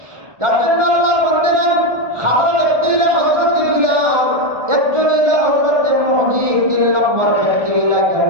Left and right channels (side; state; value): left; late; 1.4 ms